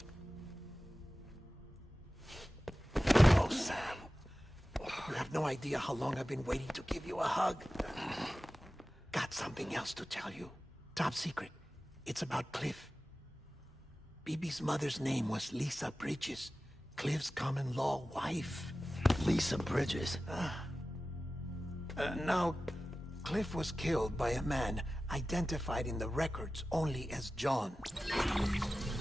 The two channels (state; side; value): normal; both; correlation 0.95